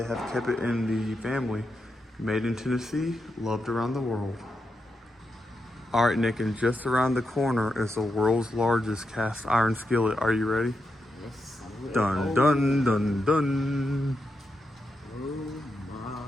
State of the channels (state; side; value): normal; both; correlation 0.85